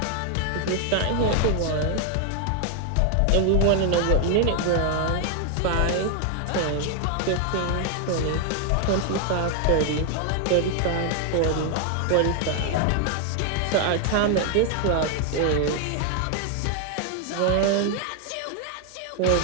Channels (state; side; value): different; both; correlation 0.00